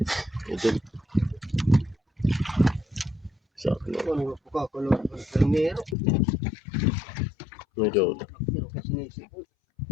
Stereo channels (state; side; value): drops out; right; at 6.0 s